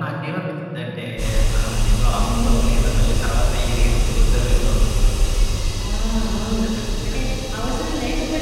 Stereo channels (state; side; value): identical; both; correlation 1.00